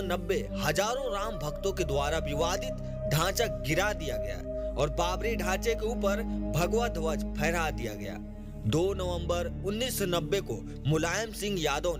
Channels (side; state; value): both; identical; correlation 1.00